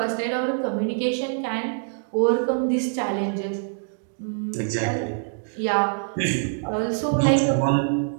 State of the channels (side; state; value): left; silent; digital silence